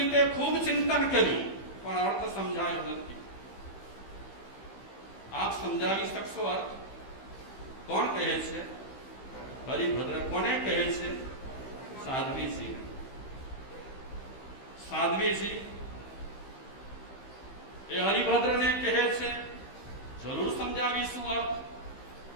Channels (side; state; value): right; late; 15 ms